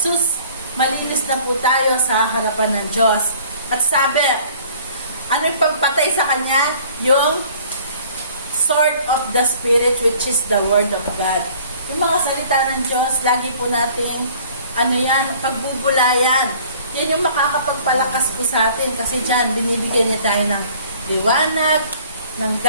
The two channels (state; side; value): inverted; both; correlation -0.53